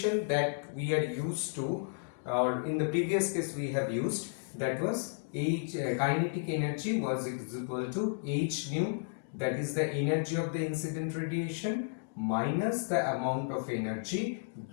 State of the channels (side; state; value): right; silent; digital silence